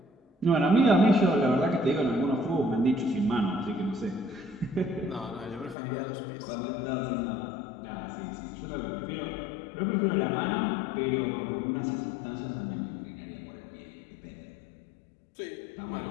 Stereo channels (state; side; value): drops out; right; at 5.8 s